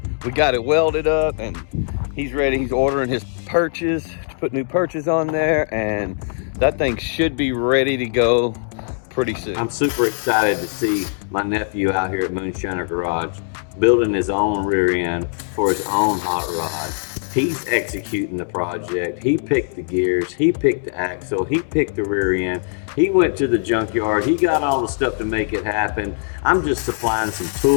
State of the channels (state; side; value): silent; right; digital silence